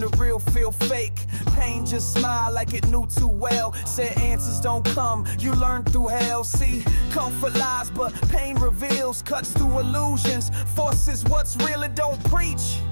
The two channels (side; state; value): both; inverted; correlation -1.00